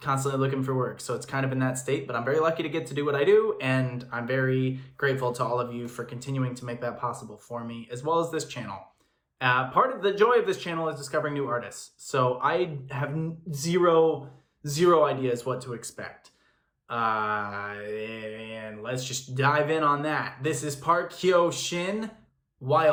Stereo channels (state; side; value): identical; both; correlation 1.00